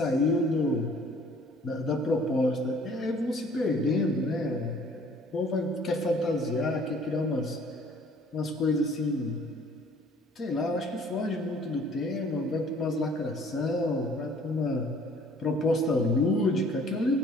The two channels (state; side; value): normal; both; correlation 0.55